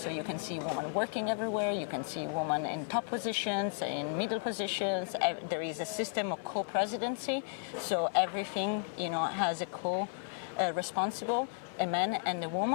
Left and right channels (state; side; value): silent; right; 55 dB below the other